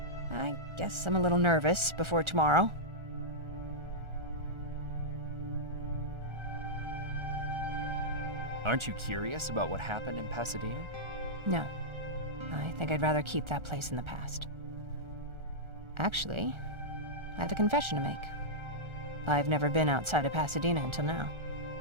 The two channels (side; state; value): left; late; 1.4 ms